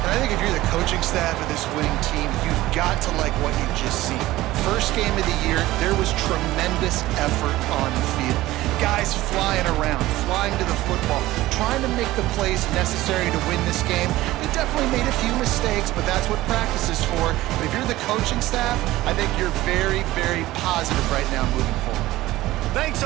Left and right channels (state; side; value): quieter; left; 16.9 dB